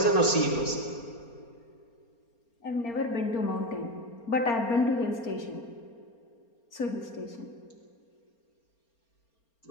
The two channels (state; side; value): late; right; 4.3 ms